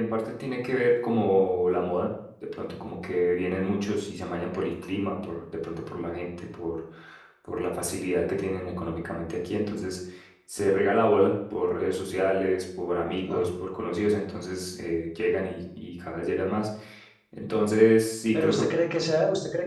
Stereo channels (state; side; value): identical; both; correlation 1.00